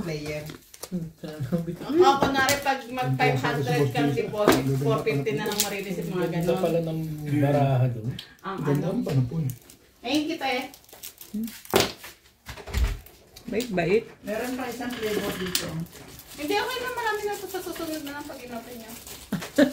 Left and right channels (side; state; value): both; identical; correlation 1.00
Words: player. Ako, kunwari, pag mag 500 kang deposit, 450 na lang marireceive mga ganon. ng baraha doon. Ang Ganda ano. ang panapon. Ayun kita eh. Bait-bait. Meron pa isang flavor dito. Hindi, okay na, marami na ito sa susunod na lang pag inapin niya.